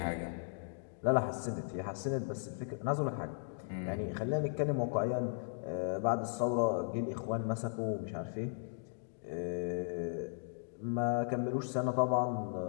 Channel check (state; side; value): silent; right; digital silence